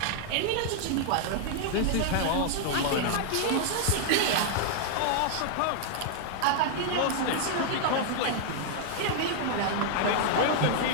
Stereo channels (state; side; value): different; both; correlation -0.01